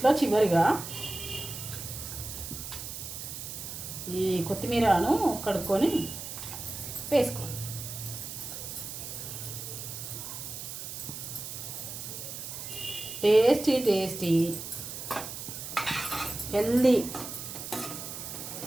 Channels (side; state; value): right; noise; hiss, 8 dB below the sound